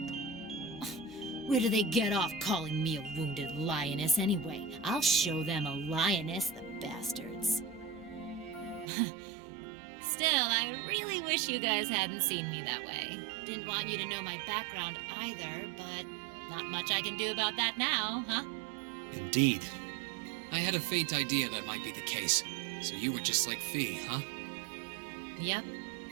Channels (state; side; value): drops out; left; at 8.9 s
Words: Where do they get off calling me a wounded lioness anyway? I'll show them a lioness, the bastards. Still, I really wish you guys hadn't seen me that way. Didn't want you to know my background either, but not much I can do about that now, huh? Indeed. I had a faint idea that might be the case. So you were just like Fee, huh? Yep.